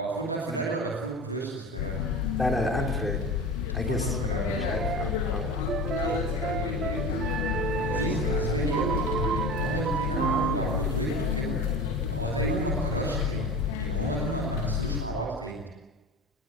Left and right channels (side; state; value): both; normal; correlation 0.31